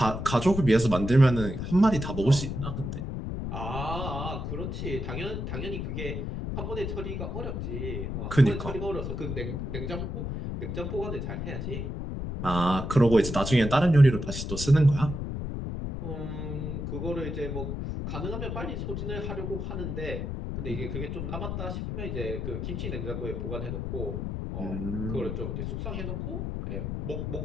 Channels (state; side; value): noise; left; rumble, 4 dB below the sound